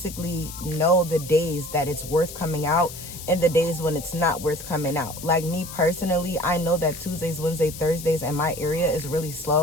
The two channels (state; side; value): noise; left; hiss, 12 dB below the sound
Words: know the days that it's worth coming out and the days when it's not worth coming out. Me personally, I know that Tuesdays, Wednesdays, Thursdays in my area is really